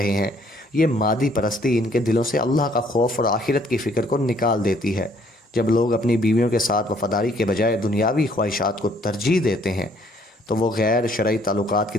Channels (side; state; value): both; normal; correlation 0.63